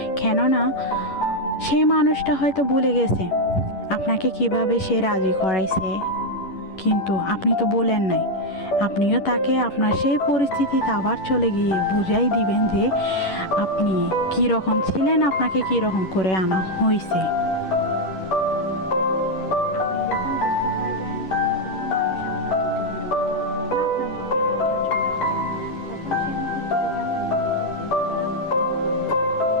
কেননা সেই মানুষটা হয়তো ভুলে গেছে আপনাকে কিভাবে সে রাজি করাইছে, কিন্তু আপনি তো বলেন নাই। আপনিও তাকে আপনার সেই পরিস্থিতিতে আবার চলে গিয়ে বুঝাই দিবেন যে আপনি কী রকম ছিলেন, আপনাকে কী রকম করে আনা হয়েছে।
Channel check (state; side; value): late; right; 11 ms